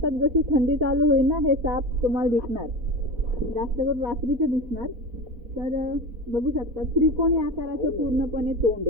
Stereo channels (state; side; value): late; left; 4.2 ms